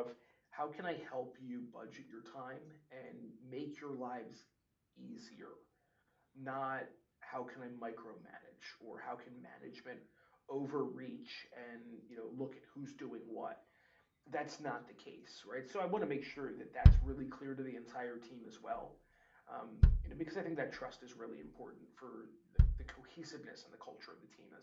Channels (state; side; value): identical; both; correlation 1.00